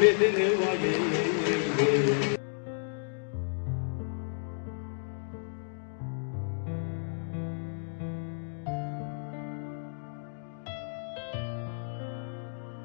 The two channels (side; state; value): right; silent; digital silence